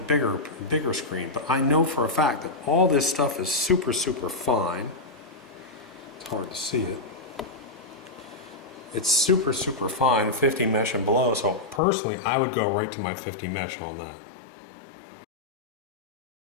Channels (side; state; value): right; drops out; at 11.8 s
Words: bigger screen. But I know for a fact that all this stuff is super, super fine. It's hard to see it. It's super, super fine, 50 mesh and below, so personally I would go right to my 50 mesh on that.